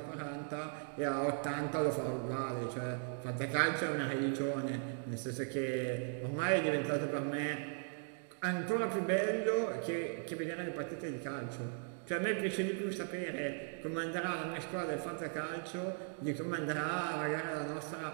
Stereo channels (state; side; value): silent; left; 52 dB below the other